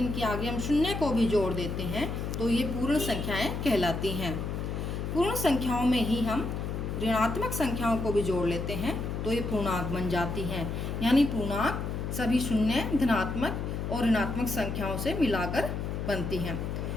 आगे हम शून्य को भी जोड़ देते हैं तो ये पूर्ण संख्याएं कहलाती हैं। पूर्ण संख्याओं में ही हम ऋणात्मक संख्याओं को भी जोड़ लेते हैं तो ये पूर्णांक बन जाती हैं। यानी पूर्णांक सभी शून्य, धनात्मक और ऋणात्मक संख्याओं से मिलाकर बनती हैं।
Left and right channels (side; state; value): left; noise; hum, 3 dB below the sound